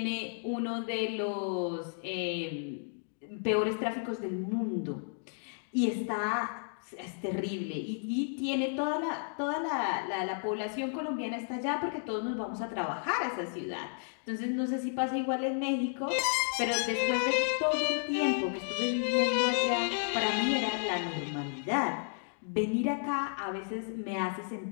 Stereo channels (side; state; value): right; silent; digital silence